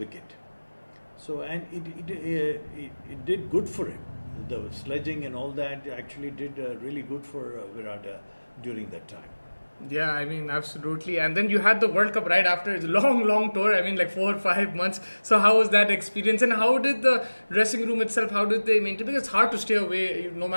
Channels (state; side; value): inverted; both; correlation -1.00